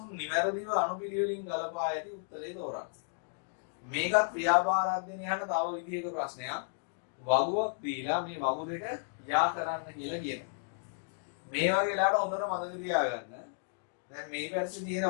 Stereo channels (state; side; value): silent; right; digital silence